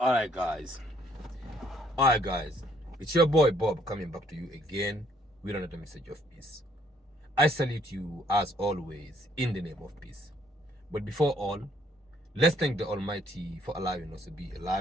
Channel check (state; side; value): normal; both; correlation 0.66